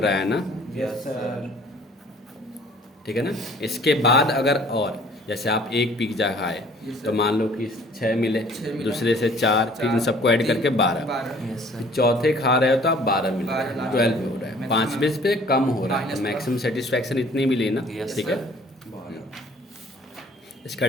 है ना, यस सर। ठीक है ना। इसके बाद अगर और जैसे आप एक पिज्जा खाए तो मान लो कि 6 मिले, दूसरे से 4, फिर इन सबको ऐड करके 12, यस सर। चौथे खा रहे हो तो आप 12 मिल रहे हैं, 12 हो रहा है, 5 पे कम हो रहा है, तो मैक्सिमम सेटिस्फैक्शन इतनी मिली ना, Yes, ठीक है। sir. इसका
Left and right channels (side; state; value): both; normal; correlation 0.54